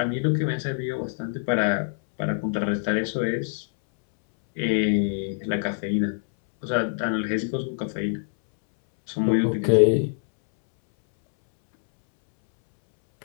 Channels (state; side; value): silent; right; 62 dB below the other